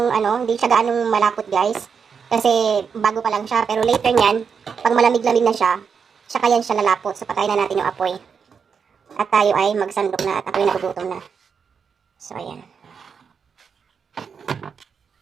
siya gaanong malapot guys. Kasi bago pa lang siya, pero later niyan, pag malamig-lamig na siya, saka yan siya lalapot. So patayin na natin yung apoy. At tayo ay magsandok na at ako'y nagugutom na. So, ayan.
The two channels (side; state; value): left; quieter; 6.3 dB